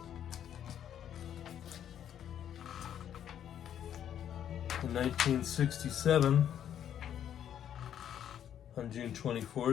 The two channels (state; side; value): quieter; right; 9.8 dB